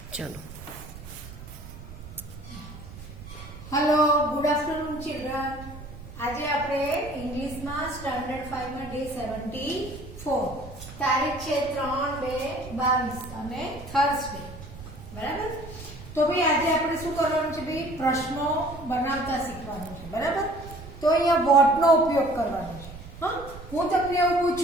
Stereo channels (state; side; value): noise; right; rumble, 14 dB below the sound